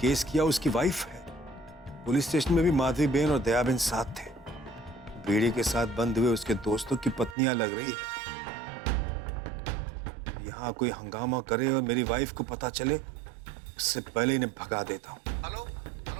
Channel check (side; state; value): left; drops out; at 7.4 s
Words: केस किया उसकी वाइफ है। पुलिस स्टेशन में भी माधवी बहन और दया बहन साथ थे। बीड़ी के साथ बंद हुए उसके दोस्तों की पत्नियां लग रही है। यहाँ कोई हंगामा करे और मेरी वाइफ को पता चले, उससे पहले इन्हें भगा देता हूँ। Hello